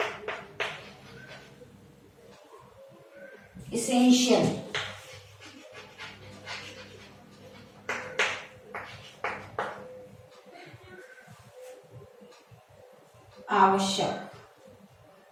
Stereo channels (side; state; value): both; identical; correlation 1.00